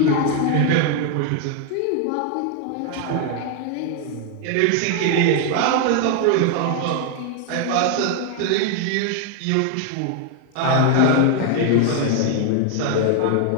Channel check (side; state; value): both; different; correlation 0.00